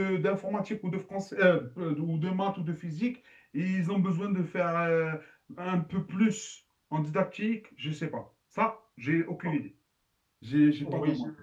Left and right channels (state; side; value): identical; both; correlation 1.00